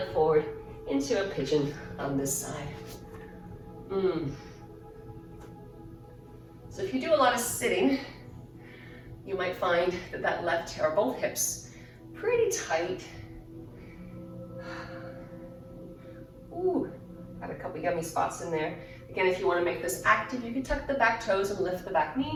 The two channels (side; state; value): both; identical; correlation 1.00